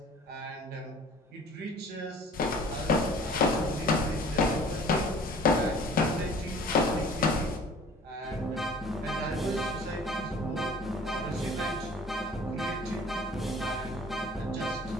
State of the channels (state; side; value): normal; both; correlation 0.49